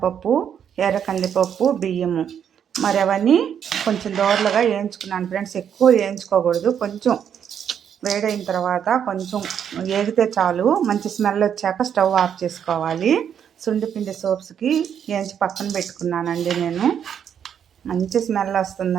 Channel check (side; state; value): left; quieter; 8.5 dB